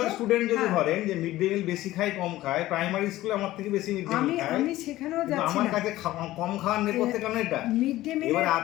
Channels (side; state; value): right; quieter; 16.0 dB